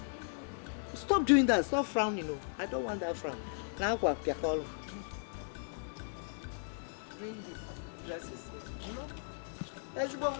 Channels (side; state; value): right; silent; digital silence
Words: Stop doing that. Stop frowning. No. I don't want that frown. Now what? Bring the dresses. Let's go.